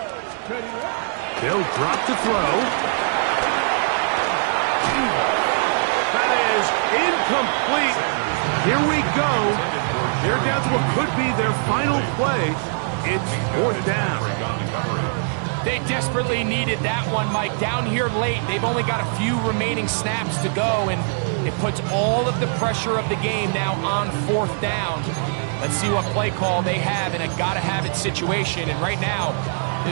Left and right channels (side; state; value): left; silent; digital silence